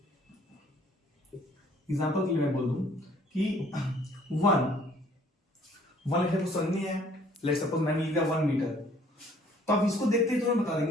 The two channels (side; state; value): both; normal; correlation 0.59